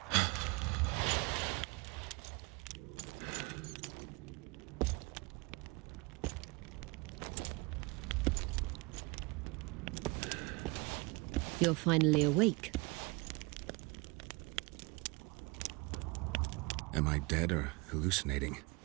You're finally awake. Am I dead or hallucinating?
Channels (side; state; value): left; quieter; 26.9 dB